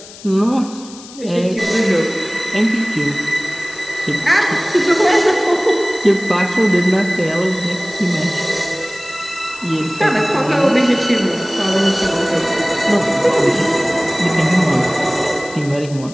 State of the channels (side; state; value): left; noise; hiss, 18 dB below the sound